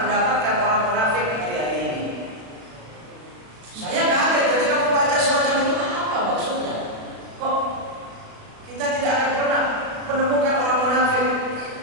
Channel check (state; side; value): late; left; 36 ms